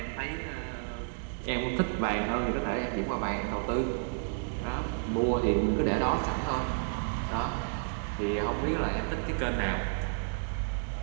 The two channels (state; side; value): silent; left; digital silence